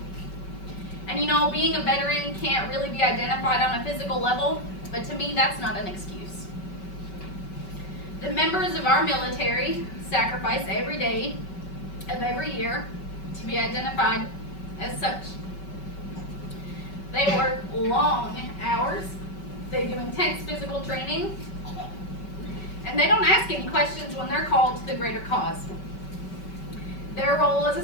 And you know, being a veteran can't really be identified on a physical level, but to me, that's not an excuse. The members of our military sacrifice every day of every year to be identified as such. They work long hours, they do intense physical training, and they don't ask any questions when they're called to the greater cause. Their role as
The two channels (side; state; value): right; late; 5.3 ms